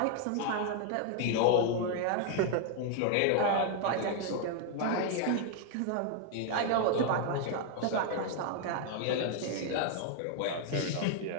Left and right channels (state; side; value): different; both; correlation 0.00